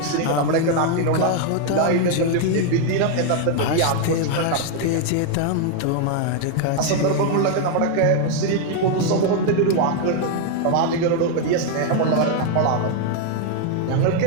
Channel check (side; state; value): both; different; correlation 0.01